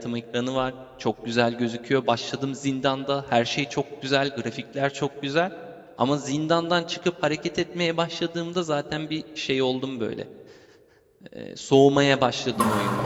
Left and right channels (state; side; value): identical; both; correlation 1.00